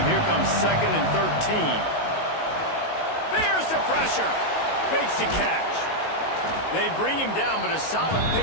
Here comes 2nd and 13. There's the pressure. Makes the catch. They bring him down, but a solid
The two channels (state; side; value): late; right; 19 ms